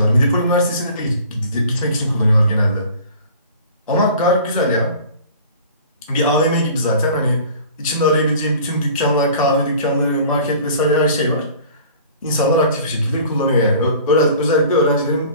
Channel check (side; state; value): both; inverted; correlation -0.46